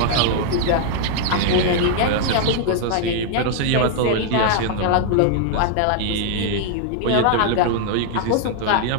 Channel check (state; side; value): different; both; correlation 0.00